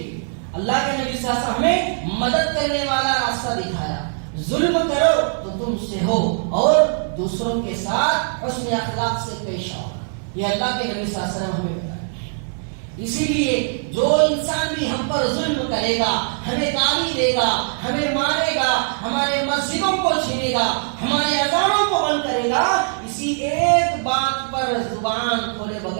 اللہ کے نبی صلی اللہ علیہ وسلم ہمیں مدد کرنے والا راستہ دکھایا. ظلم کرو تو تم سے ہو اور دوسروں کے ساتھ حسن اخلاق سے پیش آؤ. یہ اللہ کے نبی صلی اللہ علیہ وسلم ہمیں بتایا. اسی لیے جو انسان بھی ہم پر ظلم کرے گا، ہمیں گالی دے گا، ہمیں مارے گا، ہمارے مسجدوں کو چھینے گا، ہمارے اذانوں کو بند کرے گا، اسی ایک بات پر زبان کھولے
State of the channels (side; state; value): left; silent; digital silence